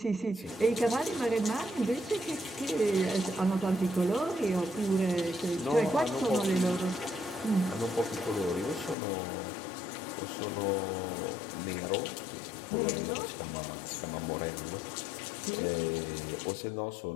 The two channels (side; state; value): right; drops out; at 9.0 s